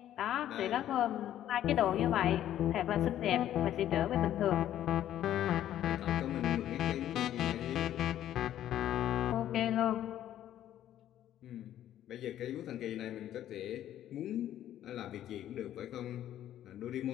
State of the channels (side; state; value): right; quieter; 11.8 dB